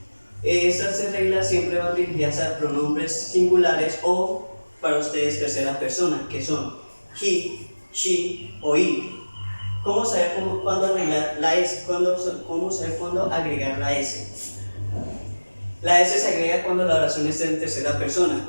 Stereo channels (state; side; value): inverted; both; correlation -1.00